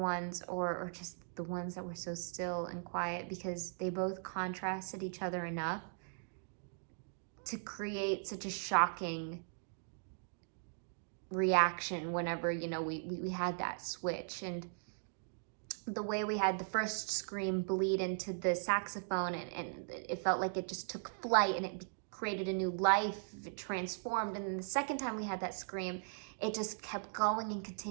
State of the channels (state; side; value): silent; left; digital silence